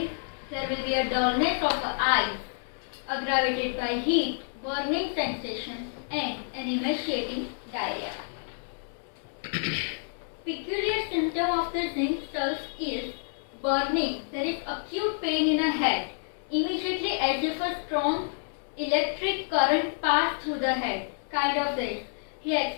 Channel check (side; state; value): right; silent; digital silence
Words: There will be a dullness of the eyes, aggravated by heat, burning sensation and an emaciating diarrhea. Peculiar symptom of the zinc sulf is burning. There is acute pain in a head, immediately as if a strong electric current passed through the head, kind of this. He